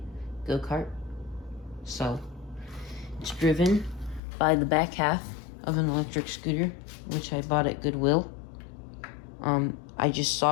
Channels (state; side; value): drops out; right; at 4.2 s